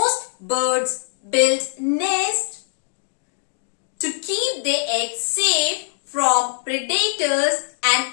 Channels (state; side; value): silent; right; digital silence